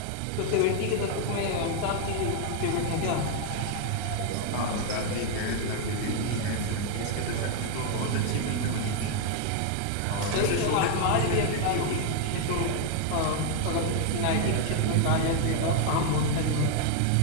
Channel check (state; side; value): different; both; correlation 0.00